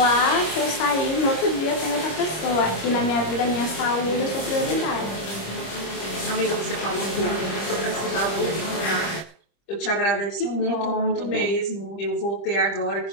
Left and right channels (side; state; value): right; late; 25 ms